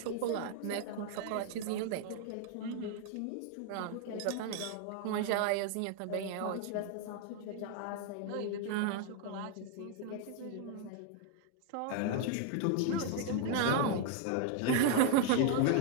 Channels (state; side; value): different; both; correlation 0.00